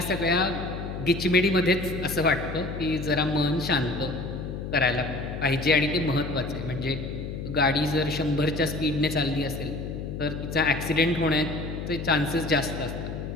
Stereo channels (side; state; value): left; noise; hum, 6 dB below the sound